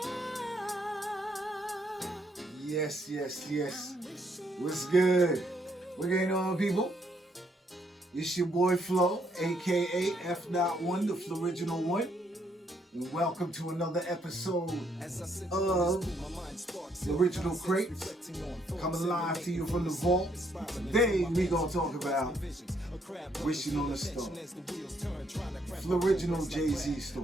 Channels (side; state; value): both; normal; correlation 0.72